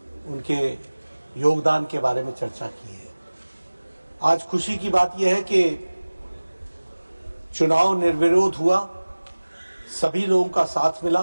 उनके योगदान के बारे में चर्चा की है। आज खुशी की बात यह है कि चुनाव निर्विरोध हुआ, सभी लोगों का साथ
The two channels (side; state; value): both; inverted; correlation -1.00